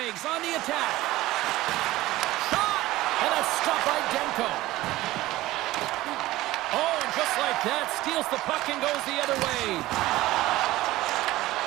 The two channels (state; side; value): quieter; left; 17.2 dB